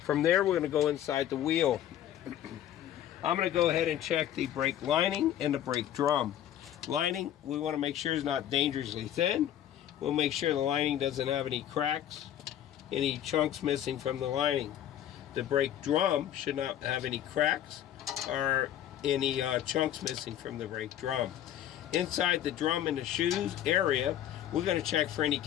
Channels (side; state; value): right; quieter; 11.2 dB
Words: From there, we're going to go inside the wheel. I'm going to go ahead and check the brake lining and the brake drum. Lining, we want to make sure it's not dangerously thin. We'll make sure the lining doesn't have any cracks, any chunks missing from the lining. The brake drum should not have any cracks or any chunks missing from the brake drum. Inside the drum and the shoes area, we're going to check for any